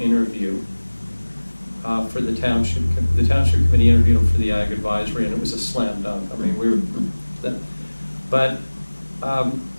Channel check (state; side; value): inverted; both; correlation -1.00